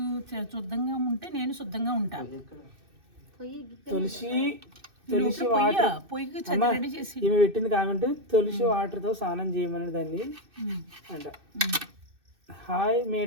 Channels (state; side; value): late; left; 2.6 ms